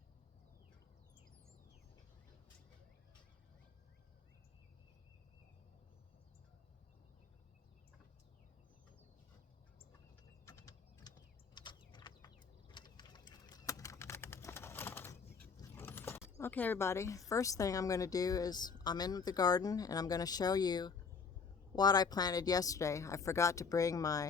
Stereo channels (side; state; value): right; quieter; 5.4 dB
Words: Okay, everybody, first thing I'm going to do is I'm in the garden and I'm going to show you what I planted yesterday. I forgot to bring